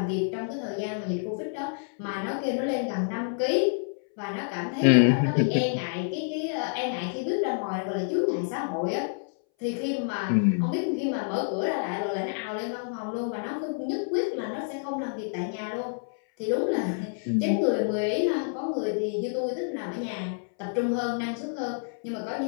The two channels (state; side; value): silent; right; 59 dB below the other